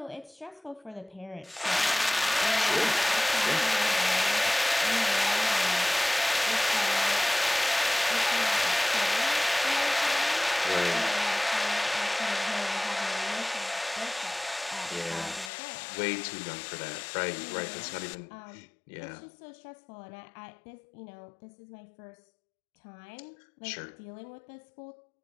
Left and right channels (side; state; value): right; drops out; at 15.5 s